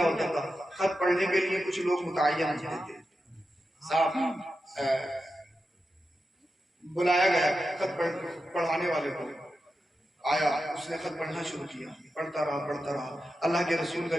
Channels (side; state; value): both; normal; correlation 0.90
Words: ہوتا تھا، خط پڑھنے کے لیے کچھ لوگ متعین ہوتے تھے۔ صاحب بلایا گیا خط پڑھانے والے کو، آیا، اس نے خط پڑھنا شروع کیا، پڑھتا رہا۔ اللہ کے رسول کا